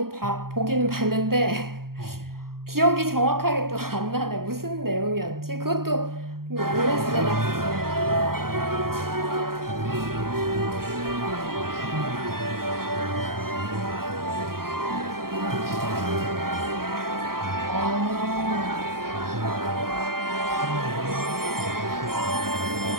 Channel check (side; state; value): left; late; 0.93 ms